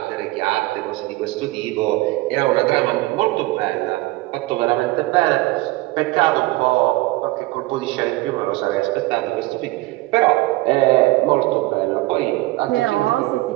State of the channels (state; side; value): quieter; left; 19.9 dB